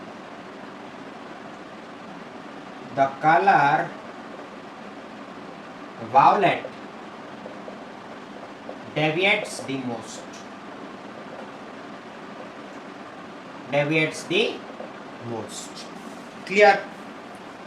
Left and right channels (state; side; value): identical; both; correlation 1.00